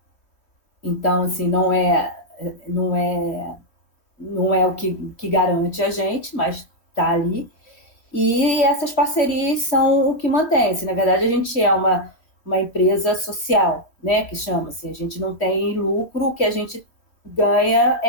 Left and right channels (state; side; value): late; right; 3.0 ms